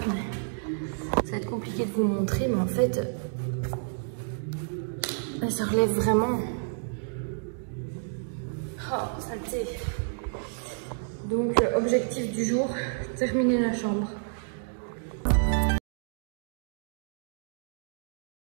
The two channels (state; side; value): silent; left; digital silence